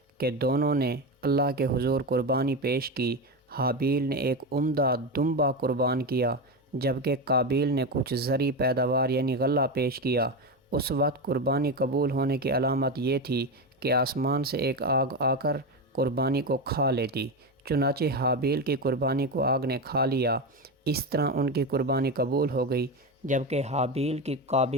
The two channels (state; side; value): normal; both; correlation 0.17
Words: کہ دونوں نے اللہ کے حضور قربانی پیش کی۔ حابیل نے ایک عمدہ دمبا قربان کیا جبکہ قابیل نے کچھ زرعی پیداوار یعنی غلہ پیش کیا۔ اس وقت قربانی قبول ہونے کی علامت یہ تھی کہ آسمان سے ایک آگ آ کر قربانی کو کھا لیتی، چنانچہ حابیل کی قربانی کو آگ نے کھا لیا۔ اس طرح ان کی قربانی قبول ہو گئی، جبکہ